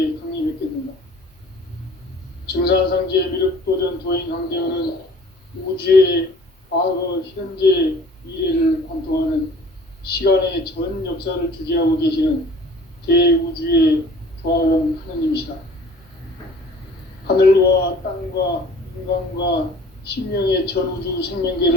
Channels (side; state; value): both; normal; correlation 0.49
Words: 강림했겠는가? 증산상제 미륵도전 도인 강대우는 우주의 과거, 현재, 미래를 관통하는 시간의 전 역사를 주재하고 계시는 대우주의 조화원 하느님이시다. 하늘과 땅과 인간과 신명의 전우주